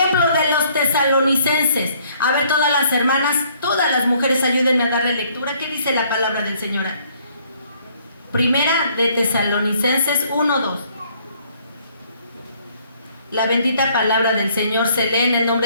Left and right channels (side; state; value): both; inverted; correlation -0.63